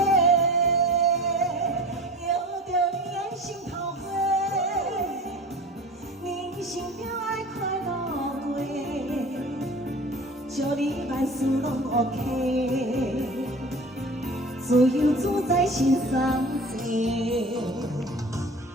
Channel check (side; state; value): both; normal; correlation 0.39